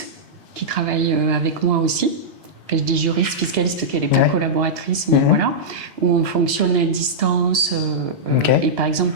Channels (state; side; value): normal; both; correlation -0.10